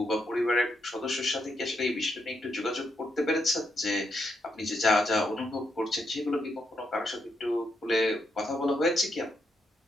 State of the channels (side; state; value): both; normal; correlation 0.80